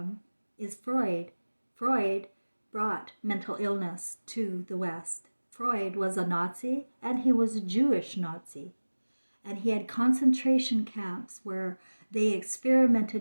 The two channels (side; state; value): both; inverted; correlation -1.00